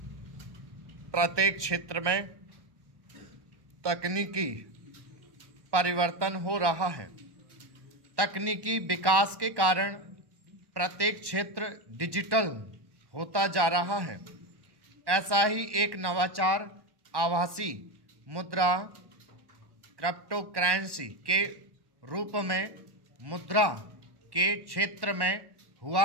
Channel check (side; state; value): left; late; 1.1 ms